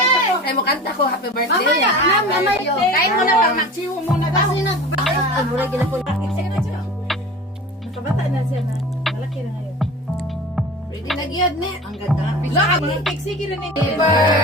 Ay, mo kanta ko, happy birthday. Kain mo na pang magsiwo muna daw. Ay, mura gina po. Nakabata na siya na. Malaki na ngayon. Ready na giyad ne. Ang ganda. Lahat mga keksiki rin eh. Happy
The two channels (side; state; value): both; normal; correlation 0.36